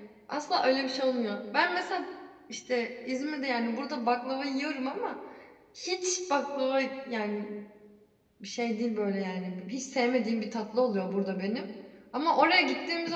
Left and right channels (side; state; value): both; identical; correlation 1.00